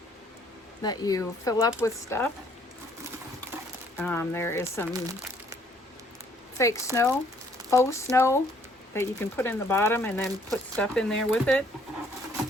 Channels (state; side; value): normal; both; correlation 0.63